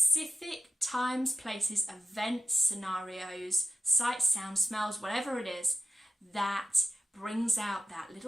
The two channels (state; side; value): normal; both; correlation 0.87